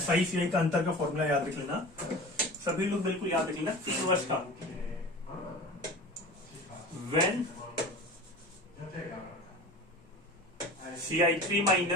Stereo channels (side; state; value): both; normal; correlation 0.36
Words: का अंतर का फॉर्मूला याद रख लेना, सभी लोग बिल्कुल याद रख लेना। 3 वर्ष का when CI3